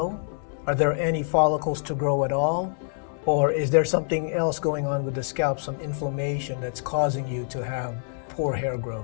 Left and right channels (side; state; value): right; silent; 61 dB below the other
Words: Are there any follicles to grow at all? Or is there something else going on with the scalp, some inflammation that's causing you to have poor hair